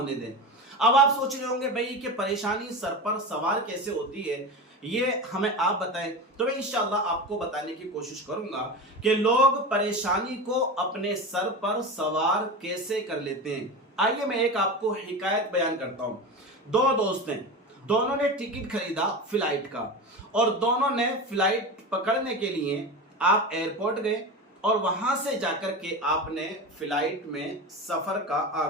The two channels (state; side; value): normal; both; correlation 0.25